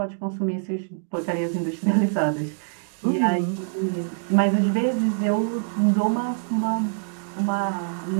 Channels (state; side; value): silent; left; digital silence